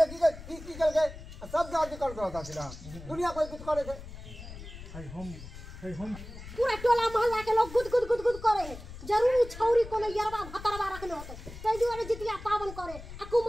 सब जाति करत रहता सीधा दुनिया कोई कुछ करे थे हम पूरा टोला मोहल्ला के लोग गुद गुद गुद गुद करे है जरूर छौरी कोनो यरवा भतरवा रखले होते तै दुआरे जितिया पावन करे आ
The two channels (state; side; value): noise; left; rumble, 13 dB below the sound